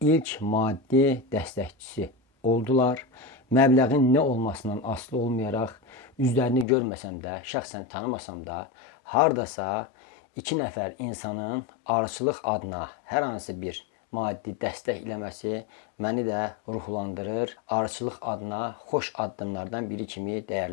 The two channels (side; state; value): right; drops out; at 6.7 s